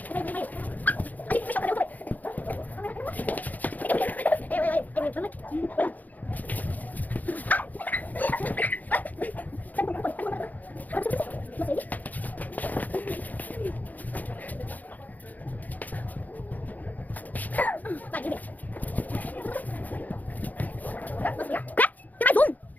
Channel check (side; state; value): right; late; 0.081 ms